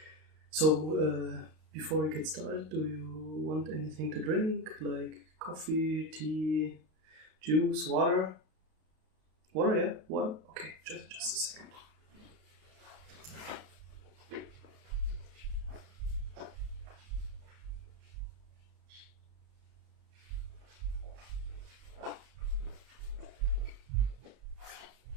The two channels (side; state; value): left; late; 33 ms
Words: So, before we get started, do you want anything to drink, like coffee, tea, juice, water? Water, yeah? Water? Okay, just a second.